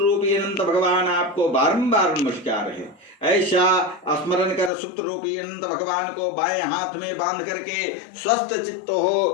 अनंत भगवान, आपको बारंबार नमस्कार है। ऐसा स्मरण कर सूत्र रूपी अनंत भगवान को बाएं हाथ में बांध करके स्वस्थ चित्त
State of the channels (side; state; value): right; drops out; at 4.7 s